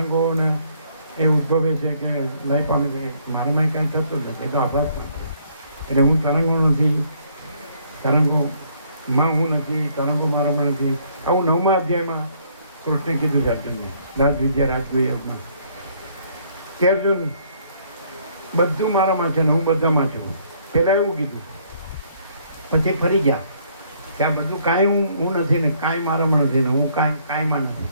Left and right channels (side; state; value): both; inverted; correlation -0.65